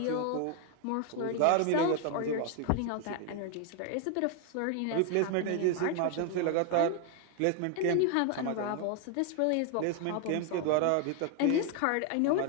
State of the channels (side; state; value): both; different; correlation 0.01